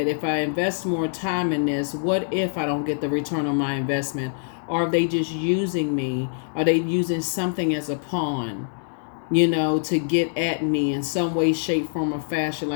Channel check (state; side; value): silent; right; digital silence